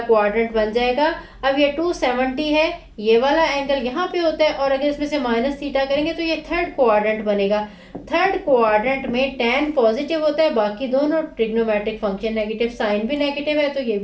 बन जाएगा। अब ये 270 है, ये वाला एंगल यहाँ पे होता है और अगर इसमें से माइनस थीटा करेंगे तो ये थर्ड क्वाड्रेंट बनेगा। थर्ड क्वाड्रेंट में टेन पॉजिटिव होता है, बाकी दोनों ट्रिग्नोमेट्रिक फंक्शन नेगेटिव, साइन भी नेगेटिव है तो ये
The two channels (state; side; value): identical; both; correlation 1.00